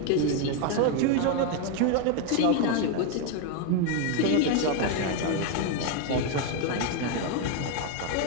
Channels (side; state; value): both; different; correlation 0.01